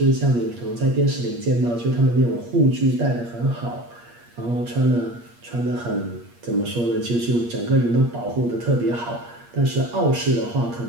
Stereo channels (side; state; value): left; late; 8.5 ms